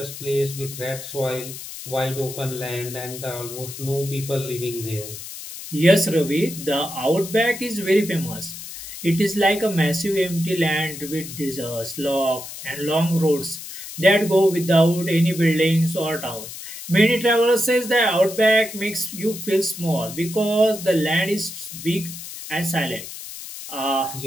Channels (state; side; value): noise; left; hiss, 11 dB below the sound